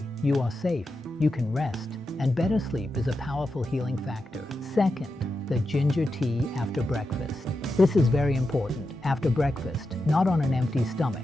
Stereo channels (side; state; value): both; normal; correlation 0.88